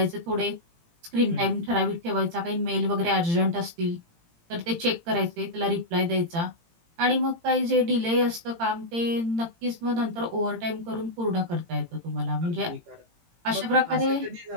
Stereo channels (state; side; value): late; left; 18 ms